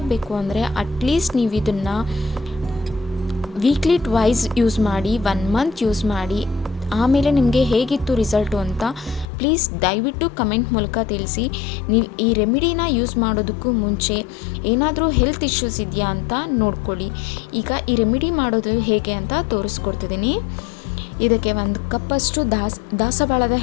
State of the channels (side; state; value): right; drops out; at 9.2 s